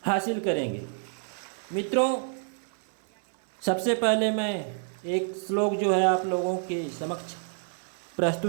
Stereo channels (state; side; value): silent; left; 57 dB below the other